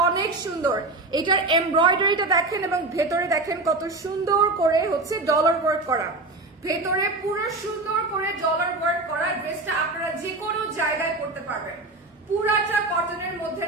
অনেক সুন্দর। এটার এমব্রয়ডারিটা দেখেন এবং ভেতরে দেখেন কত সুন্দর করে হচ্ছে ডলার ওয়ার্ক করা, ভেতরে পুরো সুন্দর করে ডলার ওয়ার্ক করা। ড্রেসটা আপনারা যে কোনো জায়গায় পড়তে পারবেন। পুরাটা কটনের মধ্যে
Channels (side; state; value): left; quieter; 3.1 dB